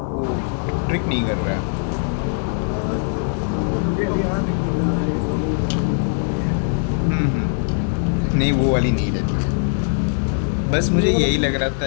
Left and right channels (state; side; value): silent; right; 55 dB below the other